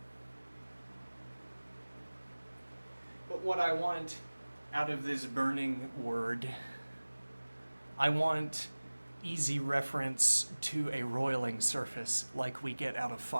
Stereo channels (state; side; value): inverted; both; correlation -1.00